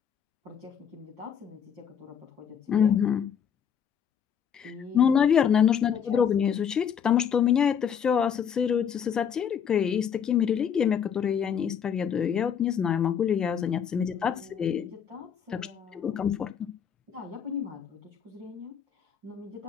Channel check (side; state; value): right; quieter; 8.0 dB